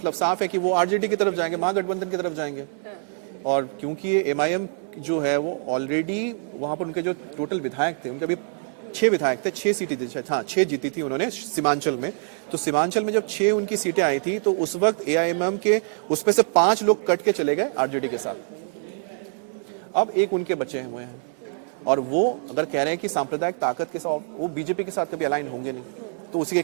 साफ है कि वो आरजेडी की तरफ जाएंगे, महागठबंधन की तरफ जाएंगे। हाँ। और क्योंकि ये MIM जो है वो ऑलरेडी वहां पर उनके जो टोटल विधायक थे, उनके अभी 6 विधायक थे, 6 सीटें थी, हाँ 6 जीती थी उन्होंने सीमांचल में। तो सीमांचल में जब 6 उनकी सीटें आई थी, तो उस वक्त AIMIM के उसमें से 5 लोग कट के चले गए आरजेडी के साथ। अब एक उनके बचे हुए हैं और वो अगर कह रहे हैं कि सांप्रदायिक ताकत के साथ वो बीजेपी के साथ कभी अलाइन होंगे नहीं, तो उसी के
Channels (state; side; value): silent; left; 58 dB below the other